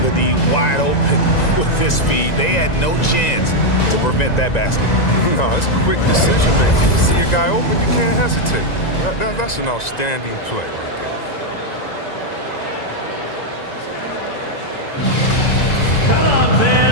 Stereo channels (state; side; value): late; right; 2.0 ms